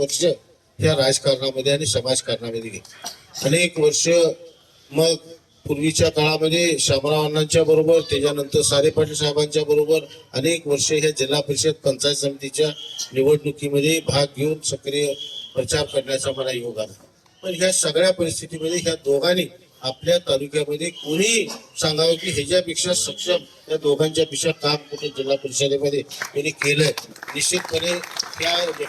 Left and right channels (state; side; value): identical; both; correlation 1.00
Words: या राजकारणामध्ये आणि समाजकारणामध्ये गेली. अनेक वर्ष मग पूर्वीच्या काळामध्ये शामराव अण्णांच्या बरोबर, त्याच्यानंतर सारे पाटील साहेबांच्या बरोबर अनेक वर्ष ह्या जिल्हा परिषद पंचायत समितीच्या निवडणुकीमध्ये भाग घेऊन सक्रिय प्रचार करण्याचा मला योग आला. पण ह्या सगळ्या परिस्थितीमध्ये ह्या दोघांनी आपल्या तालुक्यामध्ये कोणी सांगावं की ह्याच्यापेक्षा सक्षम या दोघांच्या पेक्षा काम कुठे जिल्हा परिषदेमध्ये त्यांनी केलंय. निश्चितपणे त्या